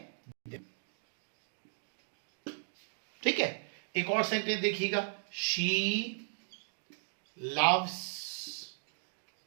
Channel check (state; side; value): silent; left; digital silence